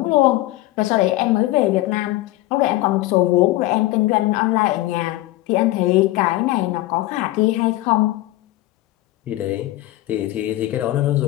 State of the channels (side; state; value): right; quieter; 17.2 dB